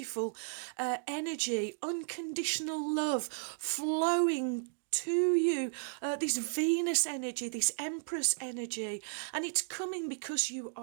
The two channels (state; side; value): silent; left; digital silence